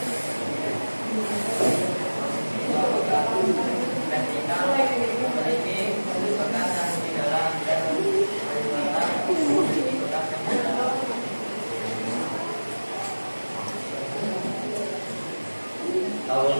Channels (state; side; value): inverted; both; correlation -1.00